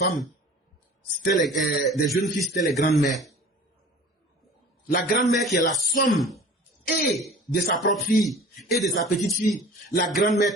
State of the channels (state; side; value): normal; both; correlation 0.43